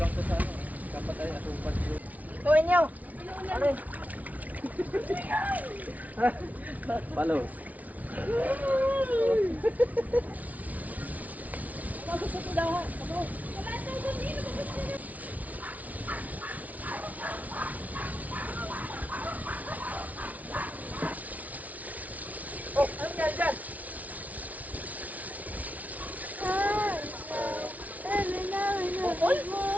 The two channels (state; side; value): late; left; 0.072 ms